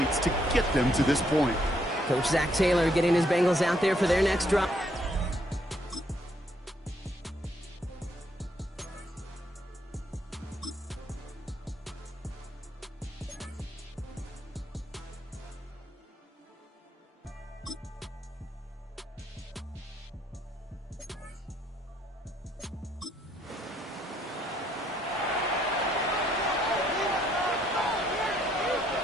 to get them to this point. Coach Zach Taylor getting his Bengals out there for their next drive.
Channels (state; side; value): normal; both; correlation 0.71